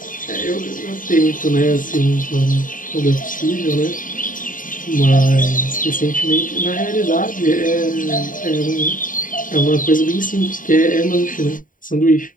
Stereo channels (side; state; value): right; late; 0.39 ms